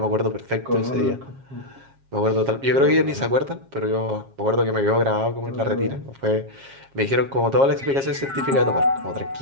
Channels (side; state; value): left; late; 7.4 ms